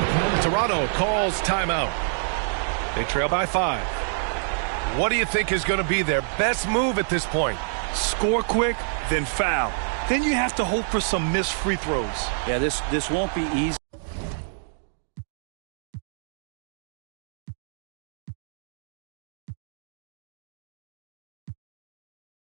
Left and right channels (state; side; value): silent; left; digital silence